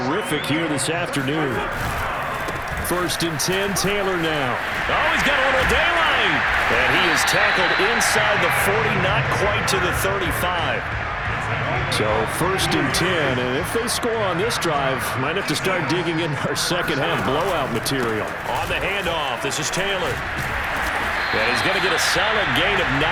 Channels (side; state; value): both; identical; correlation 1.00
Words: here this afternoon. 1st and 10, Taylor now. Oh, he's got a little daylight. And he is tackled inside the 40, not quite to the 35. So 1st and 10, and if they score on this drive, might have to start digging in our second half blowout material. On the handoff, this is Taylor. And he's going to get a solid gain of